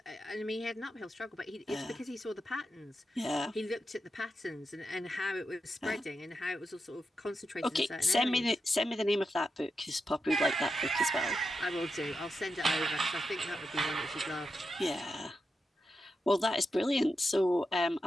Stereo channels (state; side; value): normal; both; correlation 0.87